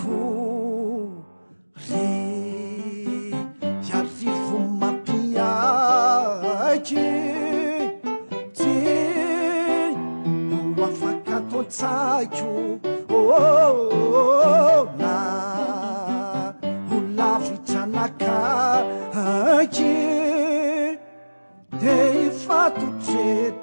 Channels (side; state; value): both; inverted; correlation -1.00